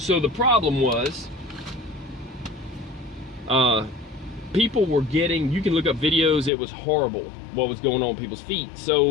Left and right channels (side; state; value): right; drops out; at 6.5 s